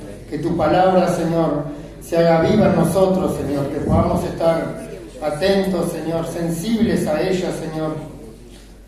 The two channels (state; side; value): identical; both; correlation 1.00